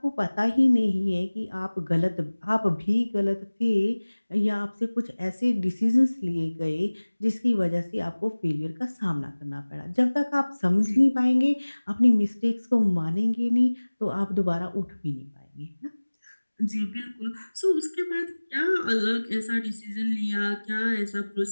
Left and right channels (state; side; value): inverted; both; correlation -1.00